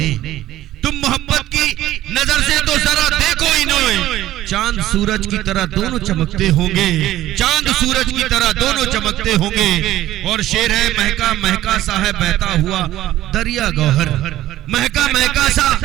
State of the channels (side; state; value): left; quieter; 14.3 dB